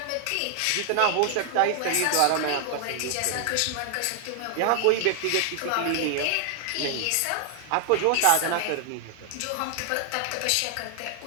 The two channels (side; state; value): both; different; correlation 0.00